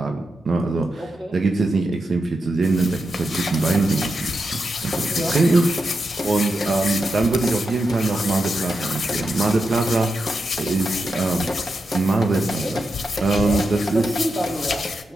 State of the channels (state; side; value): normal; both; correlation 0.87